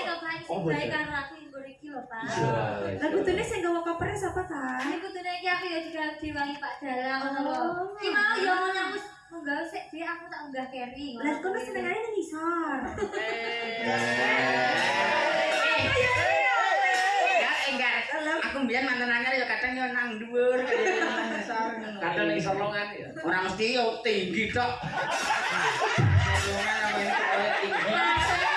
kok Pak sing baik karo aku nggo iki lho, Pak. Lah kudune sing gawa kopernya sapa ta? Ini kudune iki aku ya juga diwangi Pak Dalang ngono lho. Ki mau ya ngono wis munggah sik dhewe aku tak unggah carry. Lah kono senengane nang isor. Ya enggak. Aku mbiyen mantan anyar ya kadang yo nang dhuwur Kadang ning solongan ya. ora mesti yo tinggi tok. Solongan namanya tinggi.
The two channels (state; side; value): identical; both; correlation 1.00